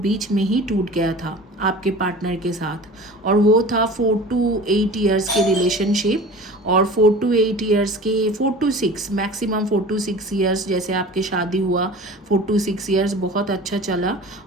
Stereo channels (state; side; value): normal; both; correlation 0.39